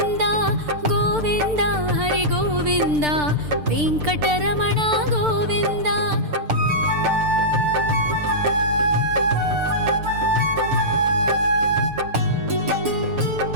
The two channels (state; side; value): late; left; 6.7 ms